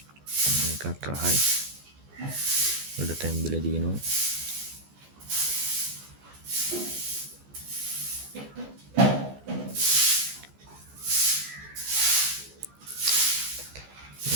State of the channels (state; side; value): late; left; 14 ms